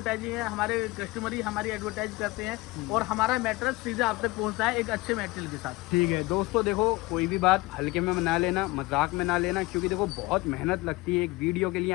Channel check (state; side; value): quieter; right; 21.7 dB